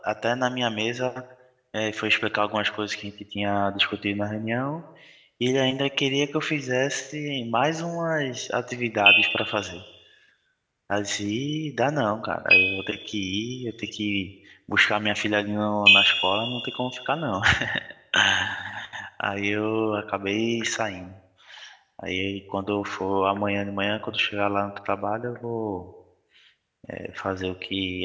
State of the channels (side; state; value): both; identical; correlation 1.00